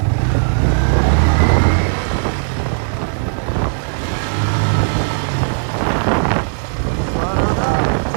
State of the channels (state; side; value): silent; left; 68 dB below the other